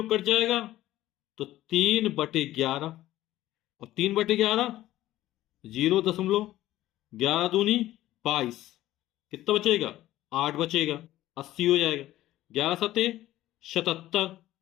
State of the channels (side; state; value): right; quieter; 14.9 dB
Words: कट जाएगा, तो 3/11, और 3/11 0.11 दूनी 22, कितना बचेगा, 8 बचेगा, 80 हो जाएगा, 11 सते 77,